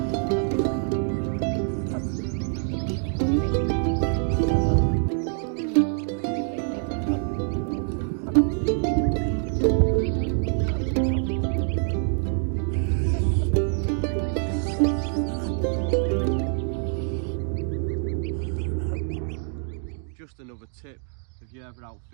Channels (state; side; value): silent; left; 56 dB below the other